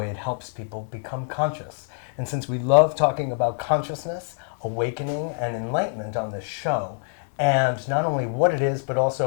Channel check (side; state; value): right; silent; 62 dB below the other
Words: it helps people become conscious. And since we love talking about consciousness, awakening, and enlightenment on this show, and not only what it is, but